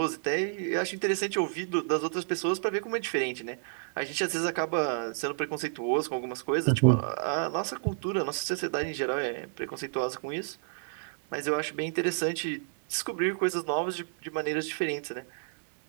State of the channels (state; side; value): silent; left; 58 dB below the other